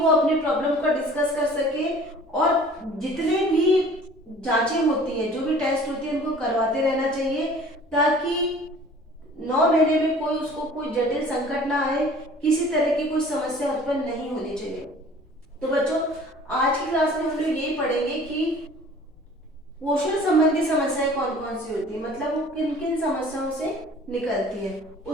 अपनी प्रॉब्लम का डिस्कस कर सके और जितने भी जांचें होती हैं, जो भी टेस्ट होती है, उनको करवाते रहना चाहिए ताकि 9 महीने में कोई उसको कोई जटिल संकट ना आए, किसी तरह की कोई समस्या उत्पन्न नहीं होनी चाहिए। तो बच्चों आज की क्लास में हम लोग यही पढ़ेंगे कि पोषण संबंधी समस्याएं कौन कौन सी होती है, मतलब वो किन किन समस्याओं से निकलती है।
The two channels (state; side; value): normal; both; correlation 0.49